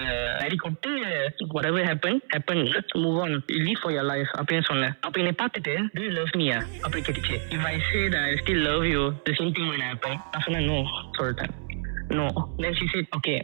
அடி கொட்டு whatever happened let's move on, live for your life அப்படின்னு சொன்னேன். அப்ப என்னை பார்த்துட்டு do you love me அப்படி கேட்டுச்சு. if I say that I still love you the same thing will happen. நான் சொன்னேன் no சொல்லிட்டேன். no. Then she said, okay,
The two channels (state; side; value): silent; left; 60 dB below the other